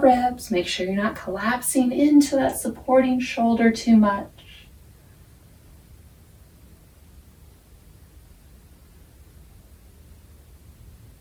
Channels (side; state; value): both; identical; correlation 1.00